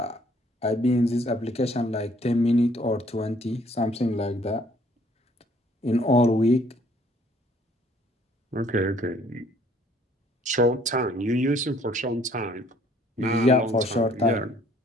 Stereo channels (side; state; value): both; normal; correlation 0.61